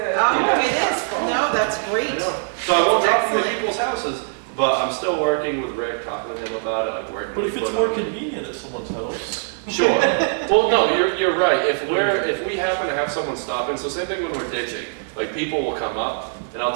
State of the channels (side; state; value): left; silent; digital silence